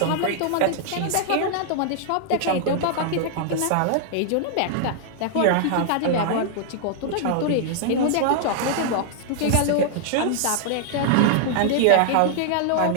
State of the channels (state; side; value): different; both; correlation -0.01